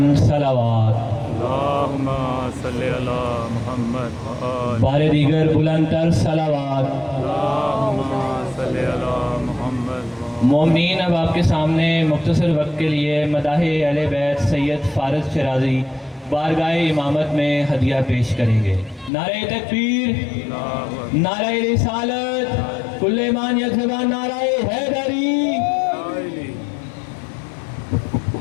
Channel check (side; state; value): right; drops out; at 19.1 s